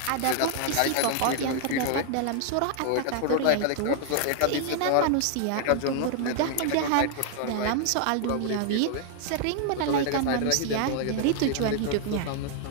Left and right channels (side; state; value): both; different; correlation 0.00